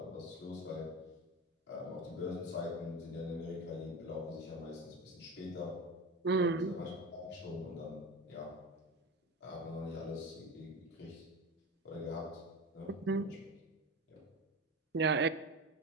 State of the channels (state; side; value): normal; both; correlation 0.25